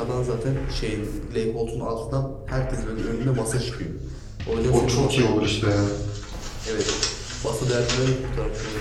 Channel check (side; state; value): both; identical; correlation 1.00